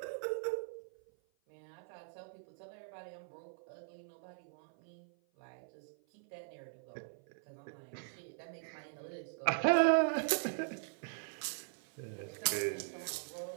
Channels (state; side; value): silent; left; 51 dB below the other